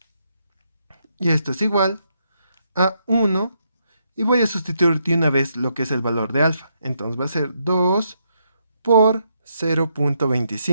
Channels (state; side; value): inverted; both; correlation -0.78